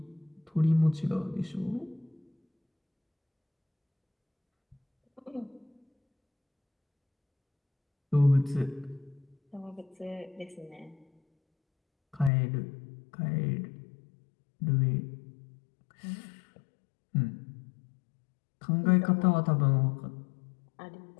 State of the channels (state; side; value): drops out; right; at 12.3 s